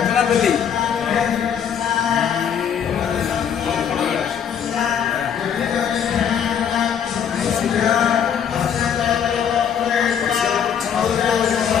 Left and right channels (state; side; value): quieter; right; 8.2 dB